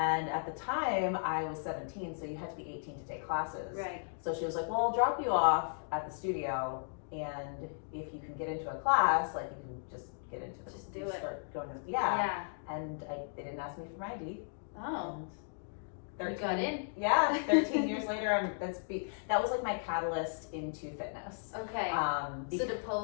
at the time I was 17, so you had to be 18 to take classes. Right. So she was like, well, I'll drop you off at the studio, and if you can get into a class, like, you can just get into the, just do it. Start going to And they didn't ask me for my ID. Oh. And you got in. Yeah, 13 years later, that was like my catalyst into fitness. Okay. So the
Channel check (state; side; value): silent; right; digital silence